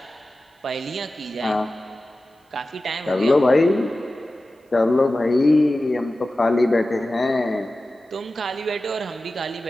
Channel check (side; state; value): both; normal; correlation 0.95